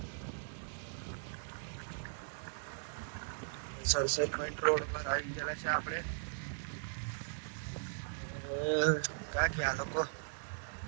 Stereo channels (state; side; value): silent; left; digital silence